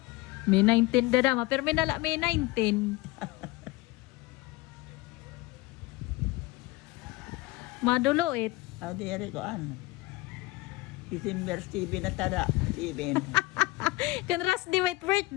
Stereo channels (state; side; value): quieter; right; 20.0 dB